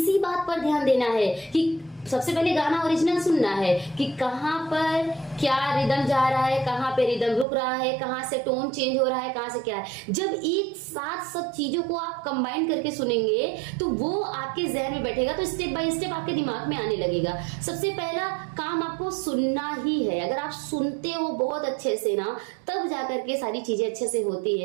बात पर ध्यान देना है कि सबसे पहले गाना ओरिजिनल सुनना है कि कहाँ पर क्या रिदम जा रहा है, कहाँ पे रिदम रुक रहा है, कहाँ से टोन चेंज हो रहा है, कहाँ से क्या है। जब एक साथ सब चीजों को आप कंबाइन करके सुनेंगे तो वो आपके जहन में बैठेगा, तो स्टेप बाय स्टेप आपके दिमाग में आने लगेगा। सबसे पहला काम आपको सुनना ही है। अगर आप सुनते हो बहुत अच्छे से ना, तब जाकर के सारी चीजें अच्छे से होती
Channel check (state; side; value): drops out; left; at 7.5 s